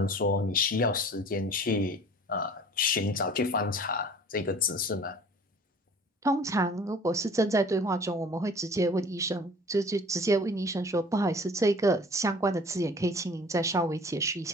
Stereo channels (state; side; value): normal; both; correlation 0.47